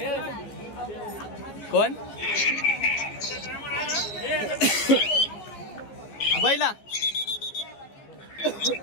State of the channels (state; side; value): late; right; 15 ms